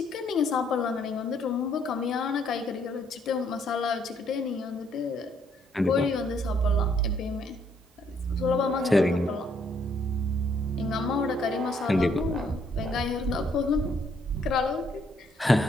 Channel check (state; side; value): normal; both; correlation 0.69